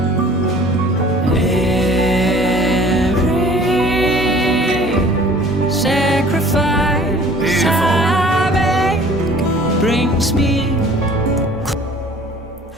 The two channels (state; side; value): normal; both; correlation 0.50